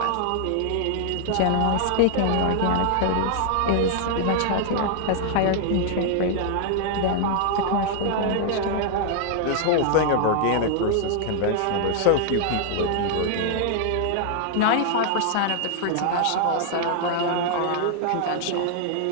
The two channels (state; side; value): different; both; correlation -0.01